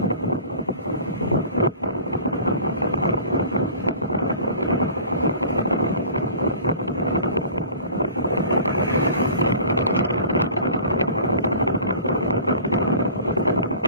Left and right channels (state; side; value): inverted; both; correlation -0.42